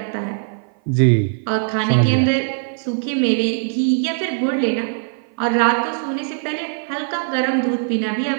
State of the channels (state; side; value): silent; left; 56 dB below the other